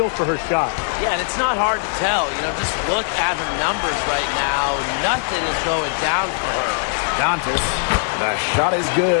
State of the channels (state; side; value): silent; right; 66 dB below the other